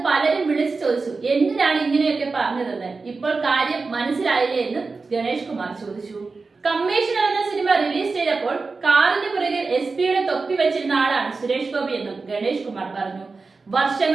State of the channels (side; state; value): left; quieter; 4.1 dB